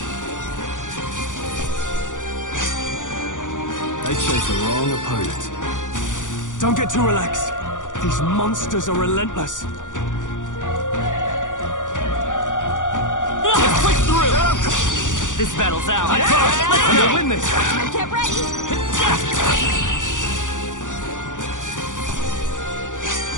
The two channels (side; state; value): right; late; 0.87 ms